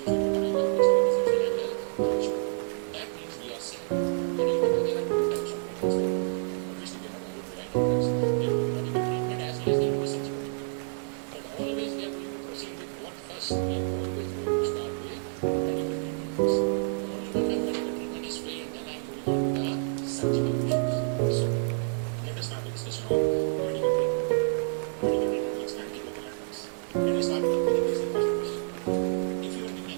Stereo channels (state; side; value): silent; left; digital silence